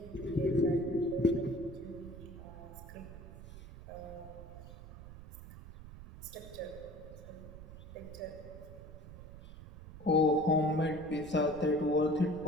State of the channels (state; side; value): noise; right; rumble, 14 dB below the sound